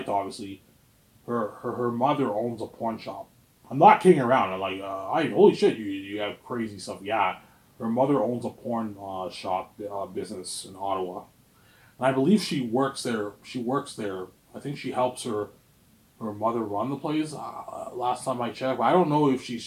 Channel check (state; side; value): identical; both; correlation 1.00